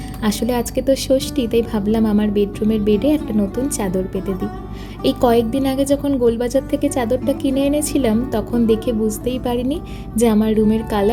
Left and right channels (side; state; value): both; identical; correlation 1.00